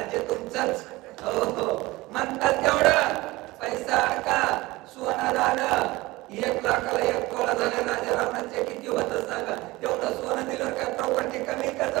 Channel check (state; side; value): quieter; left; 20.2 dB